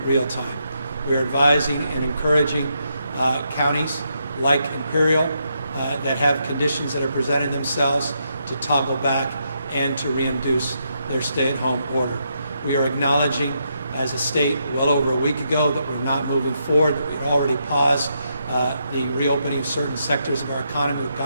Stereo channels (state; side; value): inverted; both; correlation -0.80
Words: real time. We're advising and encouraging counties like Imperial that have conditions that are presenting themselves to toggle back and to reinduce their stay-at-home order. We are acknowledging as a state well over a week ago that we're not moving forward, that we had already paused the reopening of certain sectors of our economy with